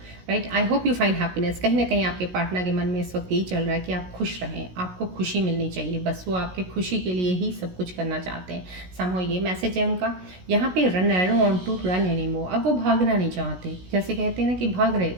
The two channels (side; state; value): left; late; 16 ms